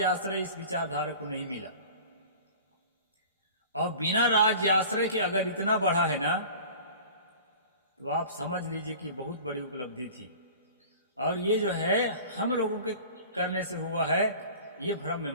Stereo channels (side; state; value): both; inverted; correlation -0.42